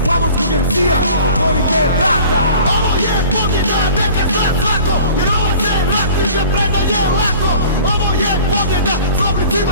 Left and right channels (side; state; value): both; inverted; correlation -0.45